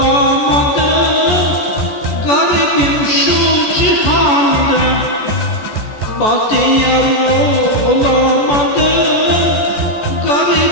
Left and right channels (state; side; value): late; right; 14 ms